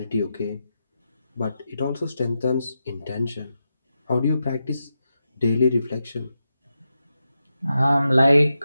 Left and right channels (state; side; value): inverted; both; correlation -0.88